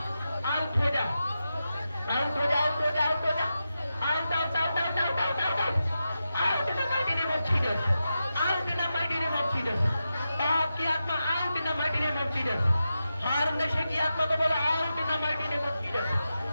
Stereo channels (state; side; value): inverted; both; correlation -0.90